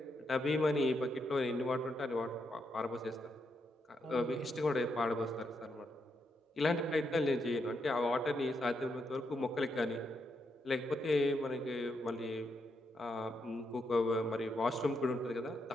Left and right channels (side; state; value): both; normal; correlation 0.80